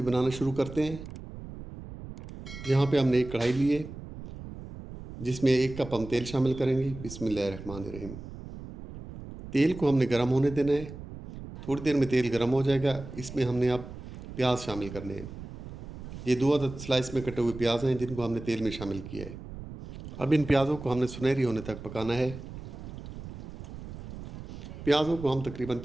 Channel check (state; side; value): noise; right; rumble, 12 dB below the sound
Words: बनाना शुरू करते हैं। यहाँ पे हमने एक कढ़ाई ली है जिसमें 1 कप हम तेल शामिल करेंगे। बिस्मिल्लाहिर्रहमानिर्रहीम। तेल को हमने गर्म होने देना है। थोड़ी देर में तेल गर्म हो जाएगा। इसमें हमने अब प्याज शामिल करने हैं। ये 2 अदद स्लाइस में कटे हुए प्याज हैं जिनको हमने तेल में शामिल किया है। अब इन प्याज़ों को हमने सुनहरी होने तक पकाना है। प्याज़ों को हम तकरीबन